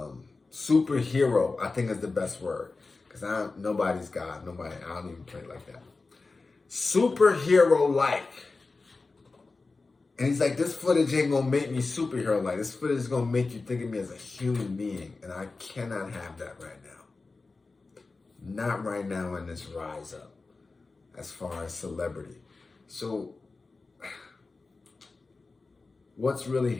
Superhero, I think is the best word. Because nobody's God. I don't even play like that. Superhero-like. And he's like, this footage ain't going to make me superhero-like. This footage is going to make you think of me as a human being. And I cannot have that right now. Not right now in this rise up. As far as celebrity. So, what's really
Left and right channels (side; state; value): right; quieter; 3.8 dB